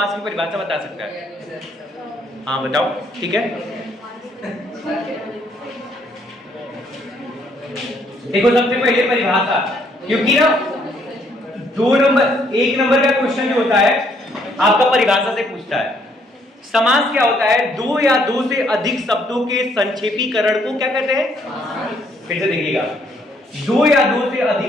की परिभाषा बता सकता है? हाँ बताओ, ठीक है। देखो सबसे पहले परिभाषा, क्योंकि ना 1 नंबर का क्वेश्चन जो होता है आपका परिभाषा से पूछता है। समास क्या होता है? 2 या 2 से अधिक शब्दों के संक्षेपीकरण को क्या कहते हैं? फिर से देखिएगा, 2 या 2 से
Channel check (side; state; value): both; normal; correlation 0.68